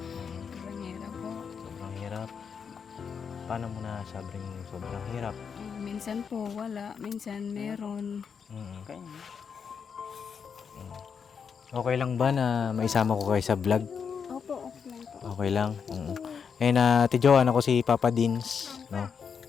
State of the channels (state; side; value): quieter; right; 6.5 dB